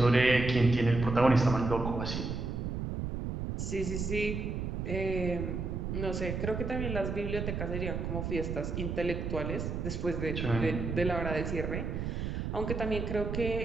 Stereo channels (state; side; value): noise; right; rumble, 3 dB below the sound